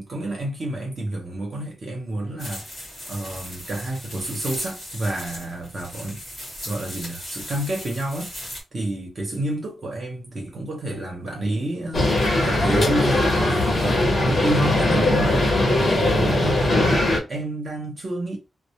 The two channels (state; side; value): normal; both; correlation 0.83